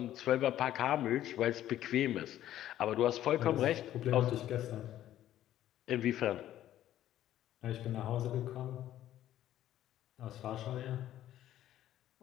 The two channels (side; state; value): right; quieter; 12.6 dB